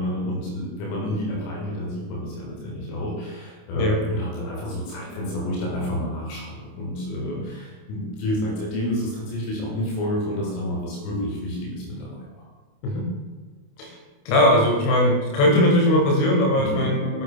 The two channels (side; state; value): right; late; 28 ms